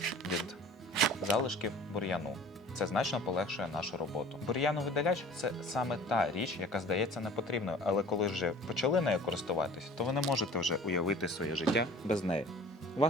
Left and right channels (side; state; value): both; normal; correlation 0.46